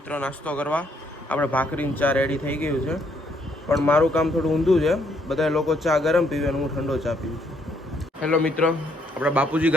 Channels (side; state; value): both; normal; correlation 0.71